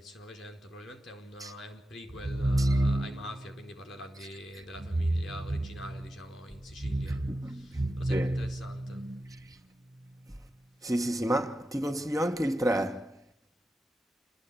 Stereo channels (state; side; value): normal; both; correlation 0.91